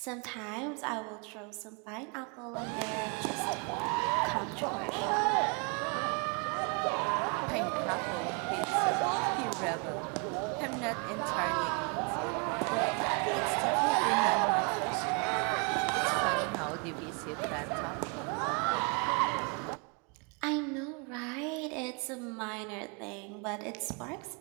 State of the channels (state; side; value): quieter; left; 35.8 dB